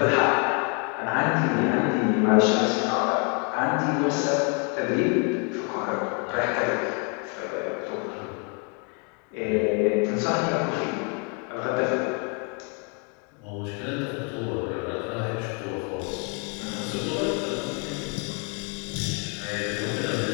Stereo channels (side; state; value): right; quieter; 36.7 dB